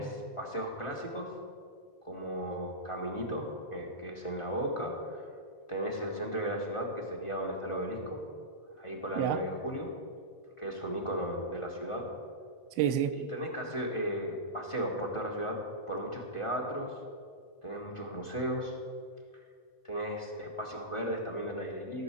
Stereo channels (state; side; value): late; right; 1.4 ms